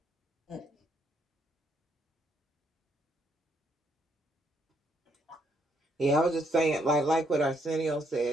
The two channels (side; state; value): both; normal; correlation 0.73